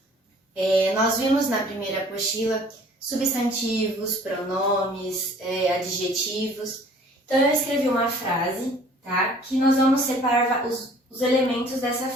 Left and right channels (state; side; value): normal; both; correlation 0.53